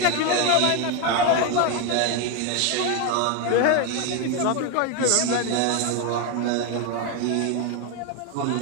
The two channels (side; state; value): both; different; correlation 0.02